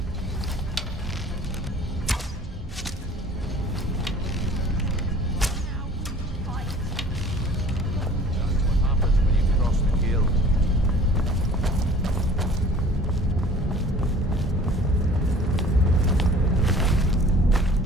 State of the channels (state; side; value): normal; both; correlation 0.49